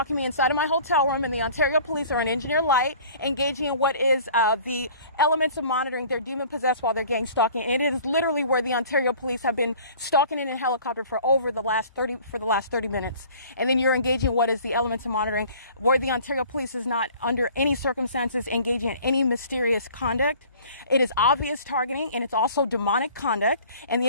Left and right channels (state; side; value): inverted; both; correlation -0.49